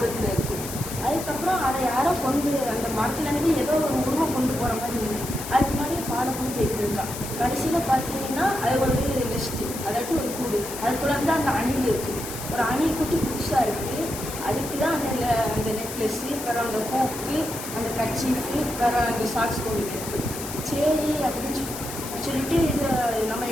இருக்குது. அதுக்கப்புறம் அதை யாரோ அந்த மரத்துலேருந்து ஏதோ ஒரு உருவம் கொண்டு போகிற மாதிரி இருந்தது. அதுக்கு முன்னாடியே ஃபாலோ பண்ணி போய்கிட்டு இருக்கா. கடைசியில் பார்த்தீங்கன்னா அது ஒரு நெஸ்ட்டு, அதாட்டி ஒரு கூடு. அதுக்குள்ளே வந்து அந்த அணில் இருக்குது. ஒரு அணில் குட்டி புதுசாக இருக்குது. அதுக்கு தான் அந்த நெக்லஸ்ஸு, அப்புறம் அந்த ஹூக்கு, அந்த கர்ச்சீஃபு, அப்புறம் அந்த சாக்ஸ் கொண்டு இருக்குது. சரி அப்படின்னு சொல்லிட்டு இது நம்ம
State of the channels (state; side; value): noise; left; hiss, 9 dB below the sound